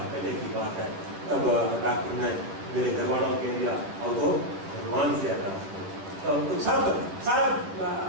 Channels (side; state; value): left; late; 10 ms